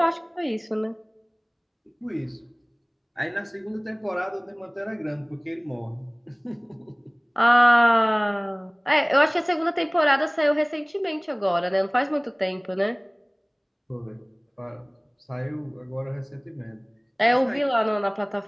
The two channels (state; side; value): identical; both; correlation 1.00